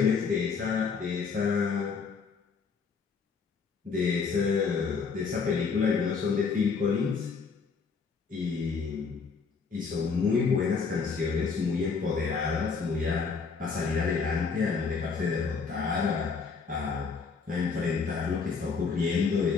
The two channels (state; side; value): quieter; right; 5.2 dB